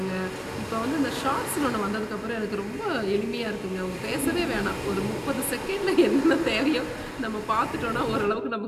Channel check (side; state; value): both; identical; correlation 1.00